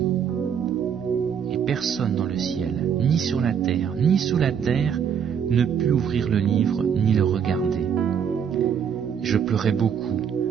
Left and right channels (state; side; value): quieter; left; 7.7 dB